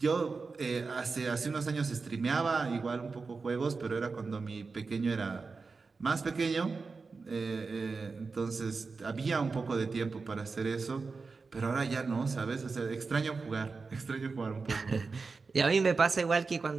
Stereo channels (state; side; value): quieter; left; 4.4 dB